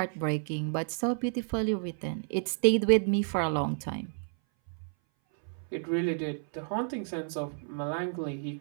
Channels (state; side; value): silent; left; 57 dB below the other